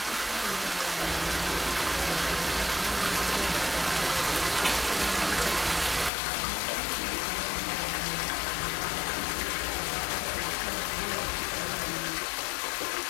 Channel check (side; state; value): right; drops out; at 6.1 s